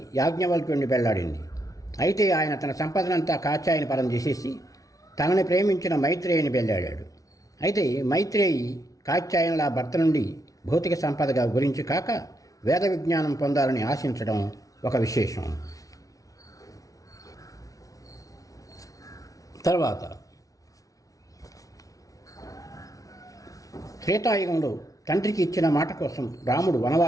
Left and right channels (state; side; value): late; right; 0.17 ms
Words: యాజ్ఞవల్క్యుడిని పెళ్ళాడింది. అయితే ఆయన తన సంపదనంతా కాత్యాయని పరం చేసేసి తనని ప్రేమించిన మైత్రేయిని పెళ్ళాడాడు. అయితే మైత్రేయి కాత్యాయనుల భర్త నుండి భౌతిక సంపదగా గురించి కాక వేద విజ్ఞానం పొందాలని ఆశించడం ఒక విశేషం. తర్వాత త్రేతాయుగంలో తండ్రికి ఇచ్చిన మాట కోసం రాముడు